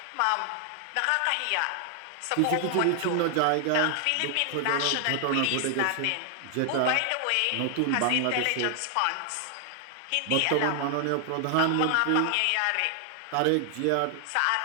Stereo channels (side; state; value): both; different; correlation 0.00